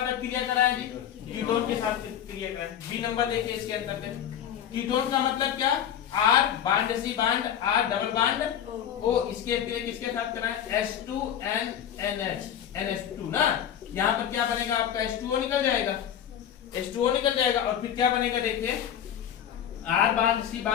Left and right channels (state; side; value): quieter; right; 9.6 dB